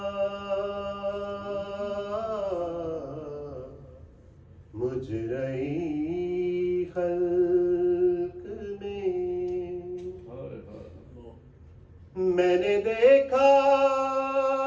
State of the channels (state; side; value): identical; both; correlation 1.00